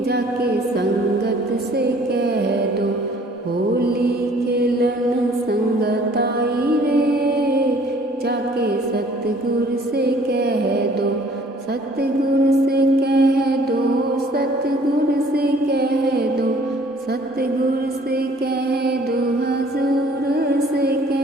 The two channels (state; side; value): normal; both; correlation 0.56